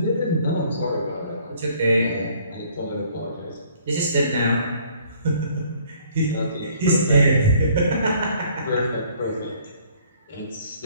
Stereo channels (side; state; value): both; inverted; correlation -0.59